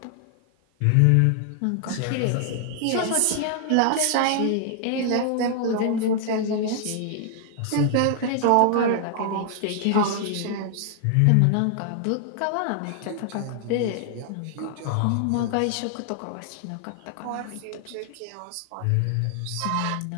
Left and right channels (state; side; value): different; both; correlation 0.00